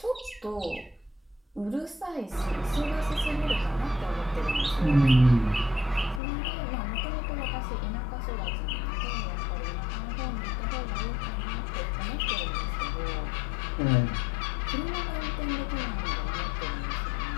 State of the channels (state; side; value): drops out; right; at 6.2 s